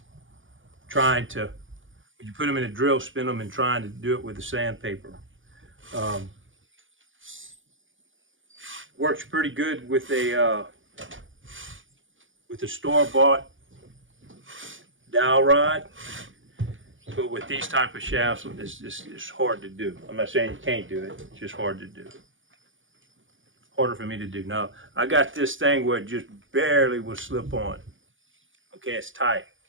when you put them in a drill, spin them and trying to do it with the sandpaper. Works pretty good with a store-bought dowel rod, but with these type of shafts, it's hard to do. I'm not saying you can't do it, it's just hard to do. Harder for me to do. Now, I got this thing where it just barely will slip on. Okay, it's tight.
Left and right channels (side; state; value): left; late; 0.57 ms